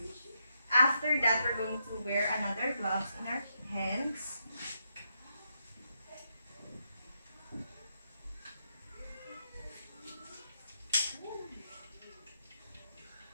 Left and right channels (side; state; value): both; inverted; correlation -0.81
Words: After that, we're going to wear another gloves in our hands.